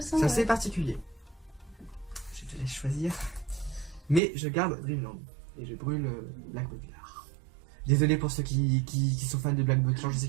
c'est assez ouais. particulier. Je te laisse choisir. Mais je garde Dreamland et je brûle Black Butler. Désolé pour ceux qui sont fans de Black Butler, je sais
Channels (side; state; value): left; drops out; at 4.2 s